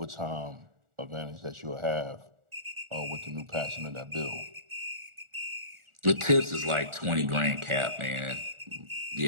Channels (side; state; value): left; late; 1.4 ms